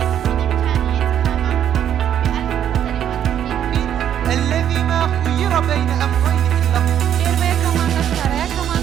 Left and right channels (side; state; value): left; quieter; 9.9 dB